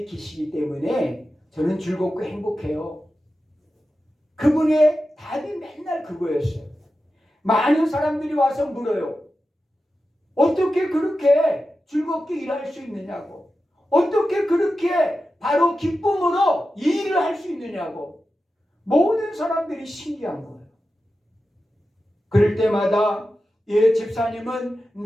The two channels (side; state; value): both; normal; correlation 0.92